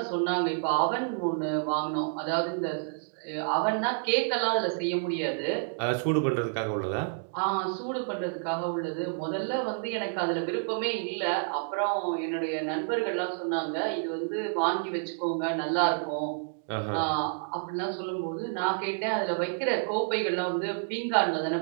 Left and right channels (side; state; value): left; silent; digital silence